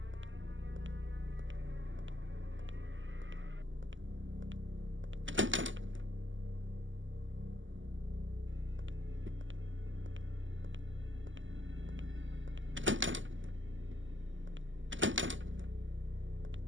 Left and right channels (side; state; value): left; late; 0.55 ms